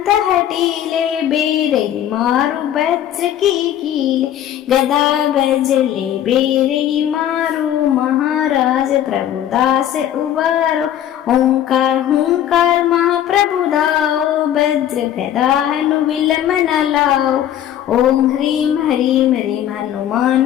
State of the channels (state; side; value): quieter; right; 11.1 dB